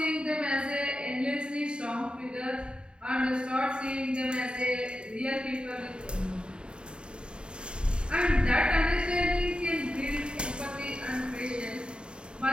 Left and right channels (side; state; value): left; late; 0.051 ms